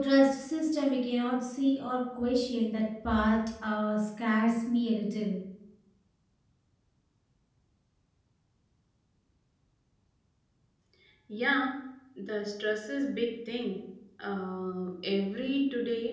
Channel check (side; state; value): both; identical; correlation 1.00